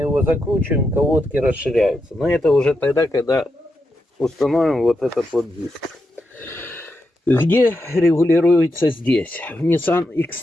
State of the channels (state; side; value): normal; both; correlation 0.85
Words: закручиваем, колодки расширяются. Но это уже тогда, когда установим вот этот вот диск. Где регулируется здесь? В Nissan